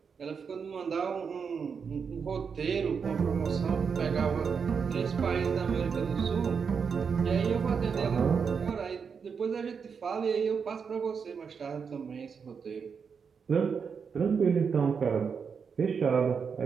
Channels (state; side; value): quieter; left; 6.1 dB